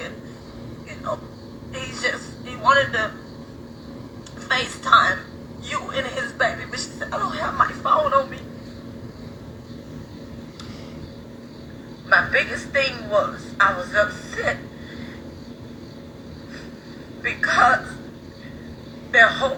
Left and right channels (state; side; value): identical; both; correlation 1.00